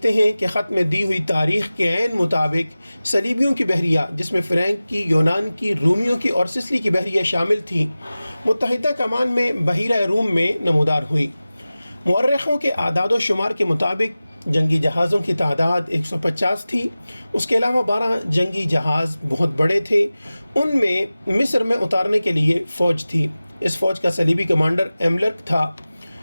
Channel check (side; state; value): both; inverted; correlation -0.97